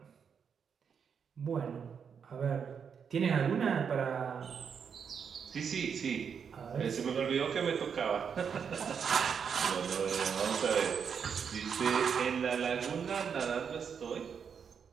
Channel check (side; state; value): left; quieter; 6.9 dB